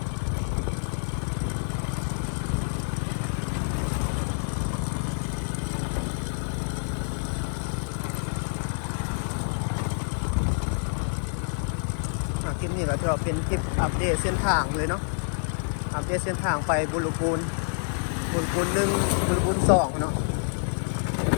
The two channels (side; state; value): right; silent; 60 dB below the other